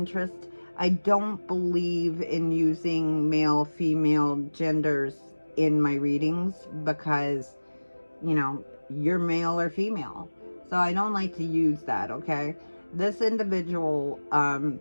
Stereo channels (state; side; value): inverted; both; correlation -1.00